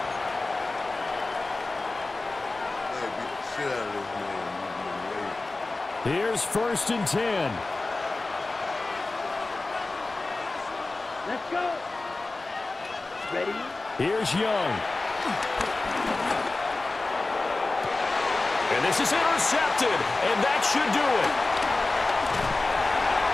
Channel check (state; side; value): quieter; right; 3.3 dB